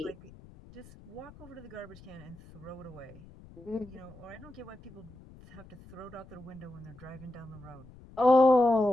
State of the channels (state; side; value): noise; left; rumble, 20 dB below the sound